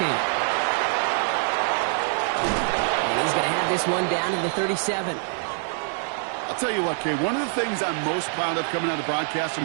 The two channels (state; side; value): silent; left; 62 dB below the other